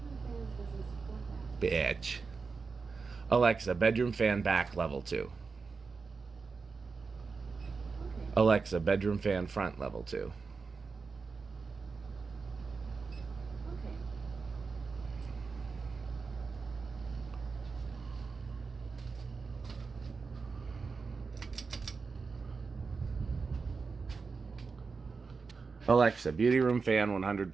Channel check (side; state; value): left; quieter; 4.7 dB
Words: Bitch. Alexa, bedroom fan back level 2. Okay. Alexa, bedroom fan front level 2. Okay. Alexa, beauty room fan